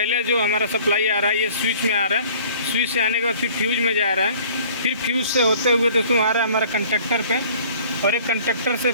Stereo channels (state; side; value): inverted; both; correlation -0.51